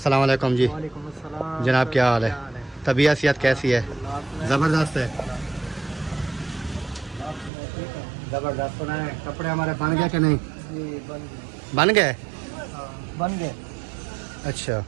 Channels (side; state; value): left; drops out; at 7.5 s